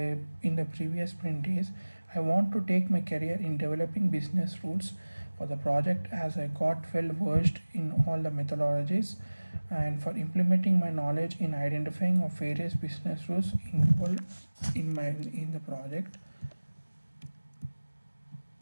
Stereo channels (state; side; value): inverted; both; correlation -1.00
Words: previous sprint is I want to take my career in developing business rules for the project as I got well versed in all the methodologies, and for implementing my knowledge in identifying of various business rules involved in the project.